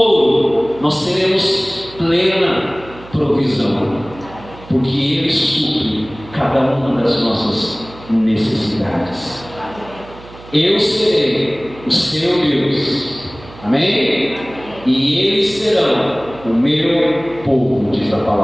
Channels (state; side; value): noise; right; hum, 19 dB below the sound